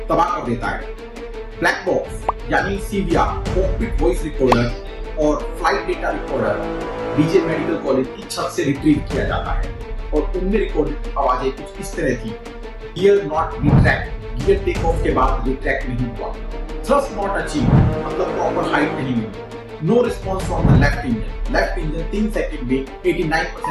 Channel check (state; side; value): identical; both; correlation 1.00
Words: तबाह कर देता है। ब्लैक बॉक्स यानी CVR, कॉकपिट वॉइस रिकॉर्डर और flight data recorder BJ medical college की छत से रिट्रीव किया जाता है और उनमें रिकॉर्डेड आवाजें कुछ इस तरह थी: gear not retract, gear takeoff के बाद रिट्रैक्ट नहीं हुआ, थ्रस्ट नॉट अचीव मतलब प्रॉपर हाइट नहीं मिली, no response from the left engine 3 second में